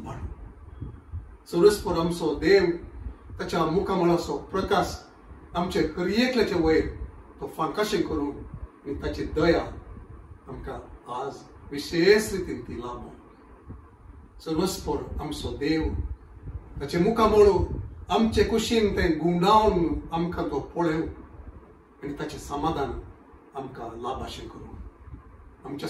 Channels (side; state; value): both; identical; correlation 1.00